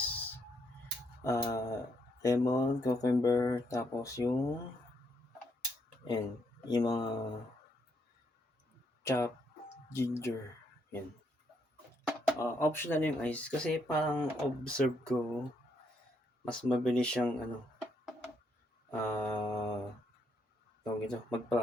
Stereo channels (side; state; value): both; normal; correlation 0.75